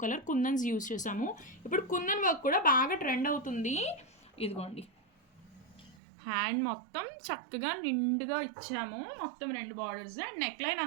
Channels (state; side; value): drops out; left; at 6.0 s